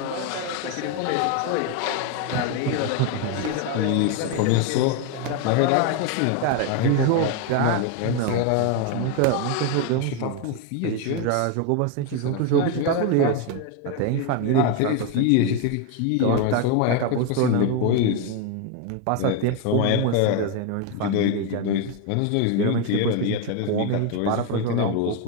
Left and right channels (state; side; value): different; both; correlation 0.01